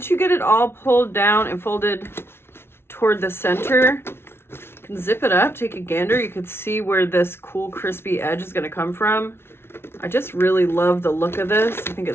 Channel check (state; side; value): late; right; 0.12 ms